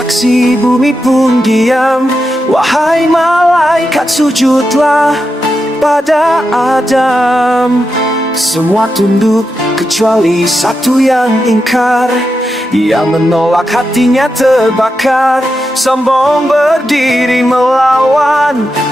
bumi pun diam. Wahai malaikat, sujudlah pada Adam. Semua tunduk kecuali satu yang ingkar. Ia menolak, hatinya terbakar. Sombong berdiri melawan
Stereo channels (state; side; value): normal; both; correlation 0.87